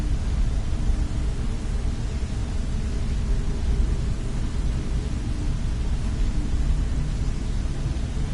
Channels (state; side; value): identical; both; correlation 1.00